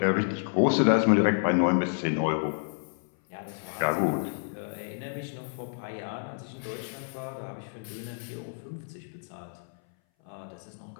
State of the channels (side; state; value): right; silent; 58 dB below the other